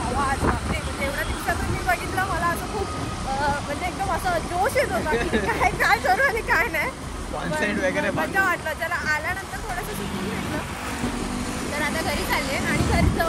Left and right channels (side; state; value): both; identical; correlation 1.00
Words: आवाज, म्हणजे एवढ्या दिवसातून मी बघितलं, मला असं खूप म्हणजे एकदम असं जोश येत होता की काय काय करू आणि काय नाही. कॉन्सर्ट वगैरे मजा वाटलं. त्याला आल्यानंतर थोडंसं सुकून भेटलं. तर आता घरी चालले आणि घरी